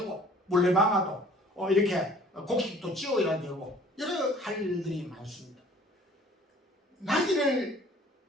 물레방아도 이렇게 곡식도 지어야 되고 여러 할 일들이 많습니다. 나귀를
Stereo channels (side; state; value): both; normal; correlation 0.52